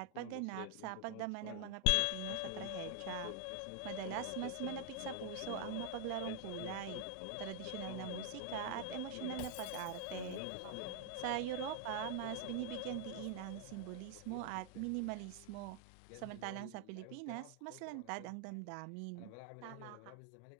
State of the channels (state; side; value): different; both; correlation 0.00